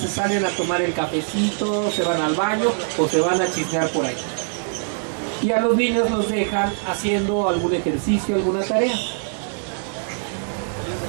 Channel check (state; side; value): silent; left; 62 dB below the other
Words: se salen a tomar el cafecito, se van al baño o se van a chismear por ahí. Y a los niños los dejan haciendo algún ejercicio, alguna tarea.